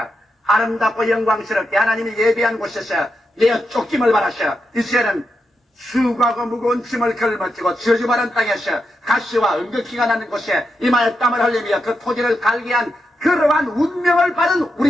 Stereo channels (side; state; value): both; normal; correlation 0.86